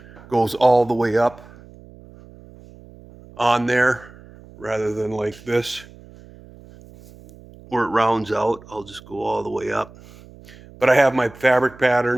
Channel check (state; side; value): noise; right; hum, 22 dB below the sound